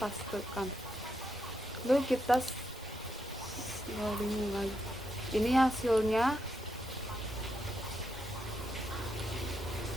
Lalu kita loading lagi. Ini hasilnya.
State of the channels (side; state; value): both; normal; correlation 0.81